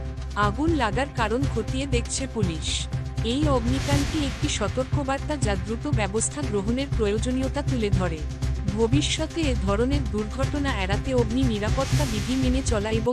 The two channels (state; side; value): identical; both; correlation 1.00